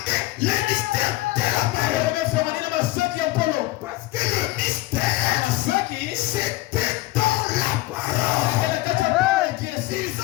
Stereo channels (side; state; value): right; quieter; 18.5 dB